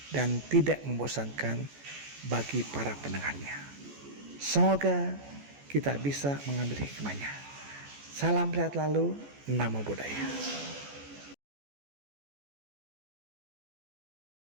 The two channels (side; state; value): left; late; 14 ms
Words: dan tidak membosankan bagi para pendengarnya. Semoga kita bisa mengambil hikmahnya. Salam sehat selalu, Namo Buddhaya.